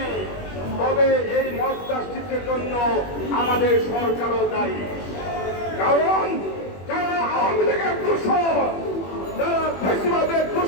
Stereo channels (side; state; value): right; late; 21 ms